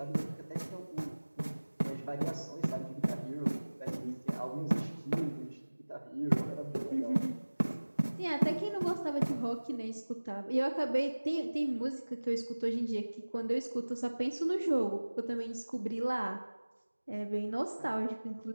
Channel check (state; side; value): inverted; both; correlation -1.00